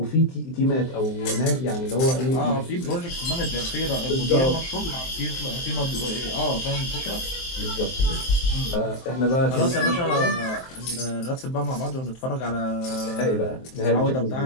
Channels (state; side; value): late; right; 23 ms